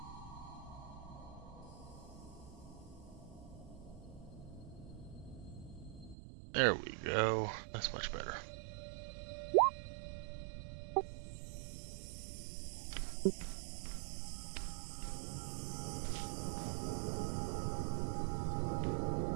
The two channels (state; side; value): drops out; left; at 6.2 s